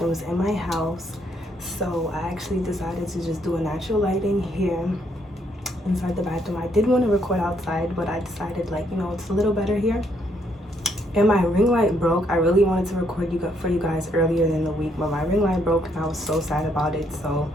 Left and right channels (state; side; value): normal; both; correlation 0.72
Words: in my house. So I actually decided to just do a natural lighting here inside the bathroom. I did want to record outside, but I decided it's a little better here. And my ring light broke. I really wanted to record for you guys earlier in the week, but my ring light broke and I was so sad about it. So